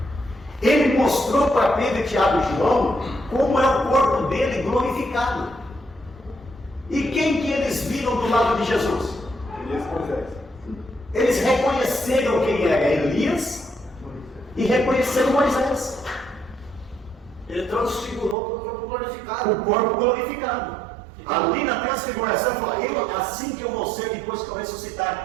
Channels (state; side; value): drops out; left; at 18.4 s